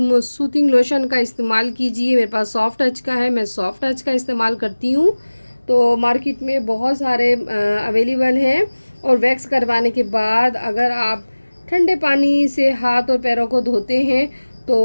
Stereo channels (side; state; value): both; inverted; correlation -1.00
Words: सूथिंग लोशन का इस्तेमाल कीजिए। मेरे पास सॉफ्ट टच का है, मैं सॉफ्ट टच का इस्तेमाल करती हूँ। तो मार्केट में बहुत सारे अवेलेबल हैं। और वैक्स करवाने के बाद अगर आप ठंडे पानी से हाथ और पैरों को धोते हैं